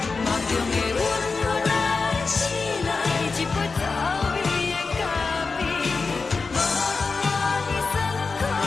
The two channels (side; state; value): right; quieter; 4.3 dB